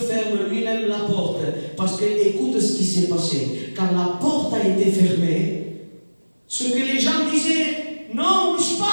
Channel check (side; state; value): both; inverted; correlation -1.00